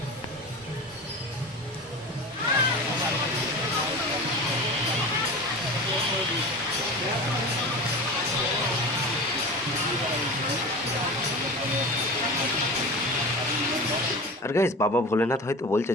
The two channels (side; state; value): both; normal; correlation 0.32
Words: আর গাইস বাবা ভোলেনাথ হয়তো বলছে